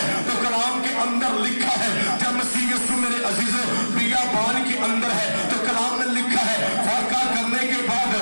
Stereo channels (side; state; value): both; inverted; correlation -1.00